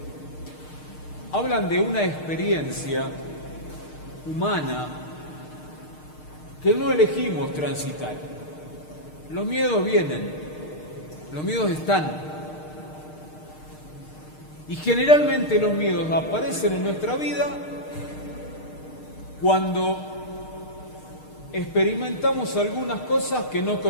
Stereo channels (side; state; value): right; late; 6.5 ms